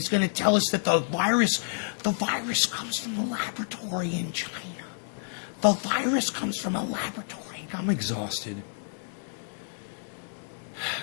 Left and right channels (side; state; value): right; silent; digital silence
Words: going to tell us that the virus comes from a laboratory in China. The virus comes from a laboratory. I'm exhausted.